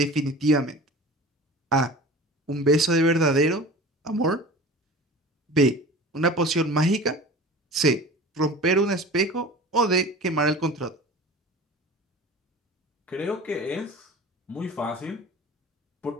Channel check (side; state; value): both; normal; correlation 0.39